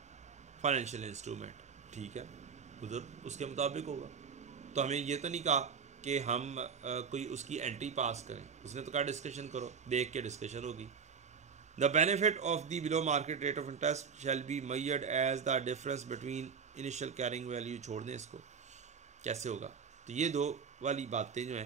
financial instrument. ठीक है, उधर उसके मुताबिक होगा। तो हमें ये तो नहीं कहा कि हम कोई उसकी एंट्री पास करें, उसने तो कहा डिस्कशन करो, देख के डिस्कशन होगी। The benefit of the below market rate of interest shall be measured as the difference between initial carrying value. छोड़ दें इसको, कैसे होगा? तो ये दो वाली बातें जो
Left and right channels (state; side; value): quieter; left; 6.2 dB